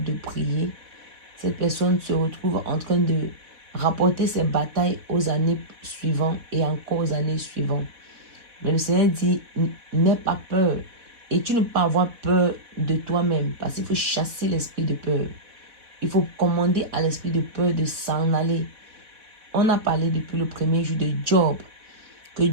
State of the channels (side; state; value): left; late; 4.1 ms